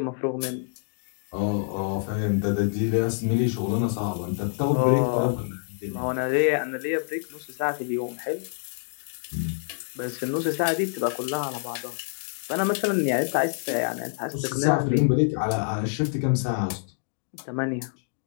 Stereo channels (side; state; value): right; silent; digital silence